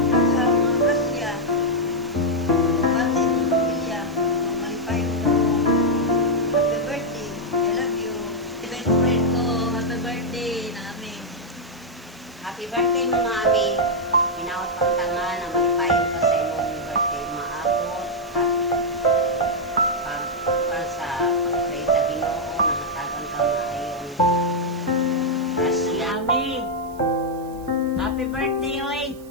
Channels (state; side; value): noise; right; hiss, 25 dB below the sound